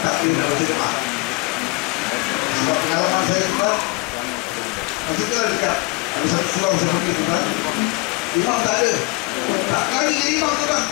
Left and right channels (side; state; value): right; quieter; 25.0 dB